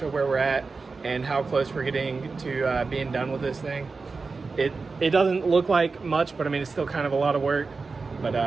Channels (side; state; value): left; quieter; 4.3 dB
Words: where we're at and how close we're getting to being done with this thing. It doesn't look like much, but I mean it's still kind of a lot of work, but